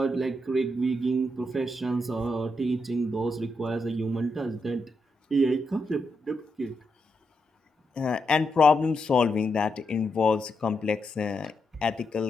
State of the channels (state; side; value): normal; both; correlation 0.83